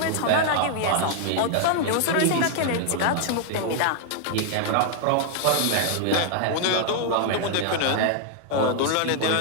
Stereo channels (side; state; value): both; different; correlation 0.00